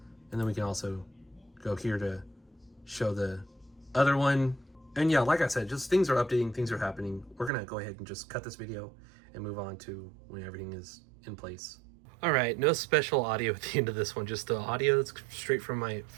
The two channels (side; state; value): left; drops out; at 7.5 s